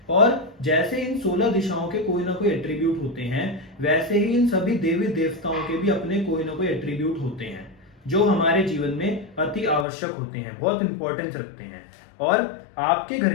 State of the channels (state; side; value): drops out; right; at 9.9 s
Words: और जैसे इन 16 दिशाओं के कोई ना कोई एट्रीब्यूट होते हैं, वैसे ही इन सभी देवी देवताओं के भी अपने कोई ना कोई एट्रीब्यूट होते हैं जो हमारे जीवन में अति आवश्यक होते हैं, बहुत इंपॉर्टेंस रखते हैं। और आपके